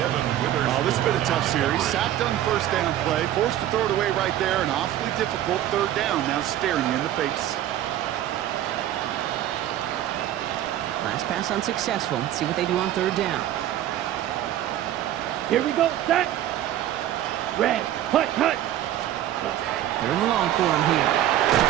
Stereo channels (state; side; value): quieter; left; 12.4 dB